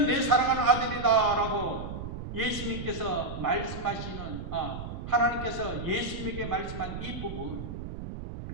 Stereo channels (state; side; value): noise; right; rumble, 8 dB below the sound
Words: 내 사랑하는 아들이다 라고 예수님께서 말씀하시는 하나님께서 예수님에게 말씀한 이 부분,